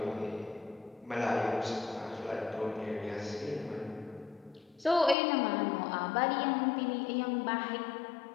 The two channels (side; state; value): right; drops out; at 5.2 s